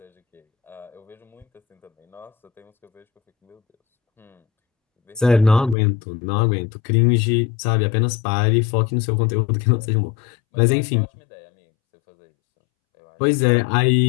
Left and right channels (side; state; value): right; drops out; at 5.8 s